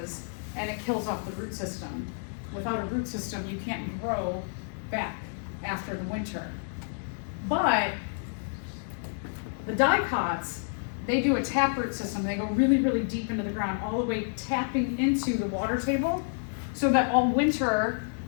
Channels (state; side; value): silent; right; digital silence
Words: and it kills off the root system. Without a root system, you can't grow back after the winter. But the dicots, they do a taproot system. They go really, really deep into the ground, all the way tapping into the water table, so that all winter